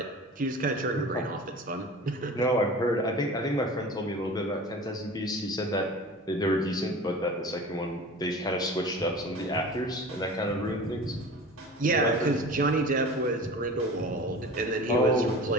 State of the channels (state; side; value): normal; both; correlation 0.37